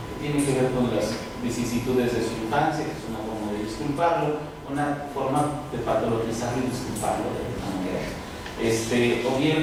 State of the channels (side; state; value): both; identical; correlation 1.00